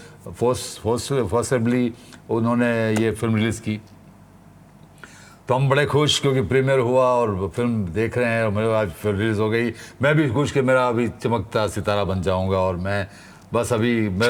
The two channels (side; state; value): both; identical; correlation 1.00